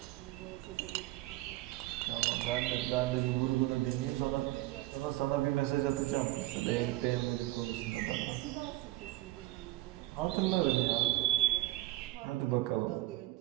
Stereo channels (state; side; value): quieter; left; 18.1 dB